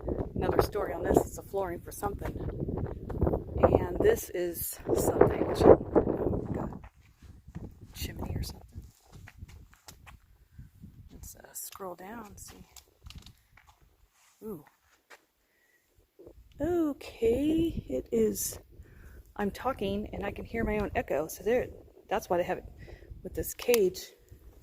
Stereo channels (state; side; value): identical; both; correlation 1.00